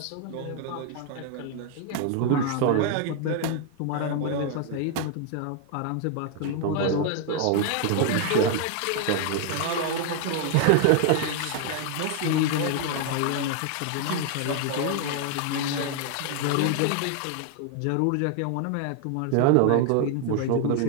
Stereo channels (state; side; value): different; both; correlation 0.00